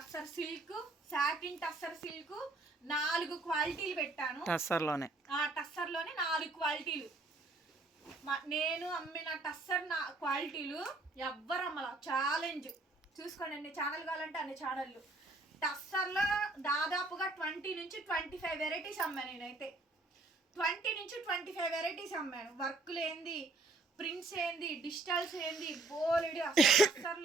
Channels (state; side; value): quieter; left; 3.1 dB